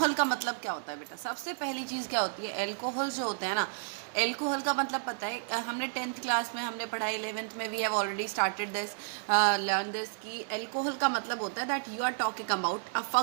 का मतलब क्या होता है बेटा. सबसे पहली चीज़ क्या होती है, अल्कोहल जो होता है ना, एल्कोहल का मतलब पता है, हमने 10th क्लास में हमने पढ़ा, 11th में we have already started this learn this कि एल्कोहल का मतलब होता है that you are talking about a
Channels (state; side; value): silent; left; digital silence